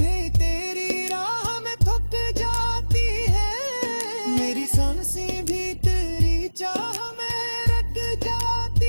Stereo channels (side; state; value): both; inverted; correlation -1.00